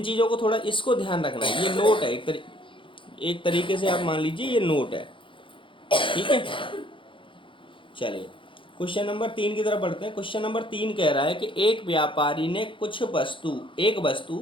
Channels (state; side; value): late; right; 0.25 ms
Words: चीज़ों को थोड़ा इसको ध्यान रखना है। ये नोट है, एक तरीके से आप मान लीजिए ये नोट है। ठीक है, चलिए क्वेश्चन नंबर 3 की तरफ बढ़ते हैं। क्वेश्चन नंबर 3 कह रहा है कि एक व्यापारी ने एक